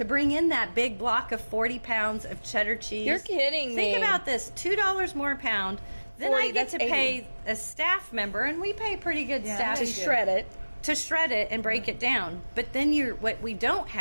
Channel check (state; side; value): inverted; both; correlation -1.00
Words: bring in that big block of 40 pounds of cheddar cheese. You're kidding Think me. about this, $2 more a pound. Then 40, I get that's to 80. pay a staff member, and we pay pretty good staff To shred it. to shred it and break it down. But then what we don't